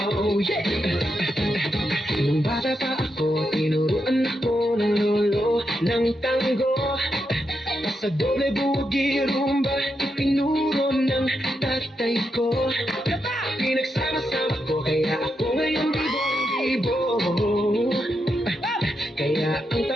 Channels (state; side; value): normal; both; correlation 0.84